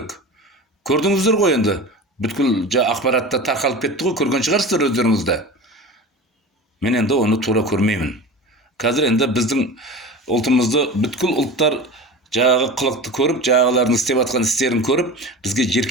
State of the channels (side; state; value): both; normal; correlation 0.32